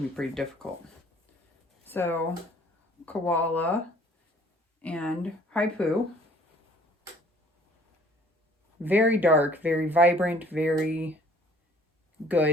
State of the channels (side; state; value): both; normal; correlation 0.55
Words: to be pretty difficult. So Koala and Haipu. Very dark, very vibrant, very